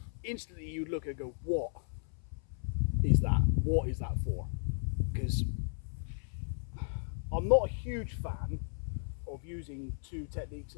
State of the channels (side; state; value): right; silent; 55 dB below the other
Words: Instantly you'd look and go, what is that? What is that for? Because I'm not a huge fan of using two techniques